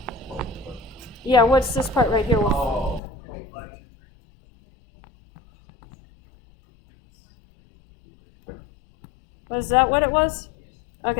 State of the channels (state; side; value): drops out; right; at 3.0 s